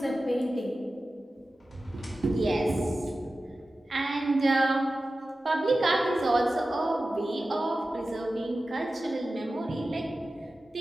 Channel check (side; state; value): both; normal; correlation 0.95